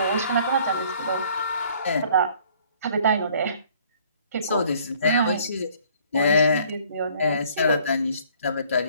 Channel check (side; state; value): both; inverted; correlation -0.58